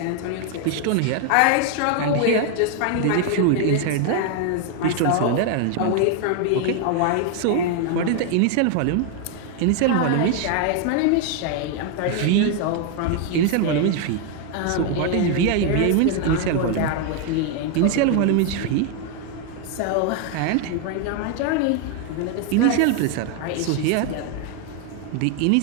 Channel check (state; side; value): different; both; correlation 0.01